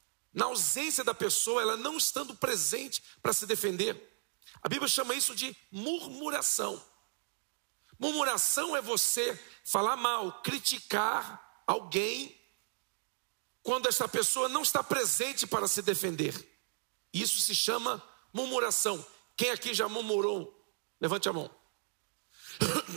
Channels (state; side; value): silent; left; digital silence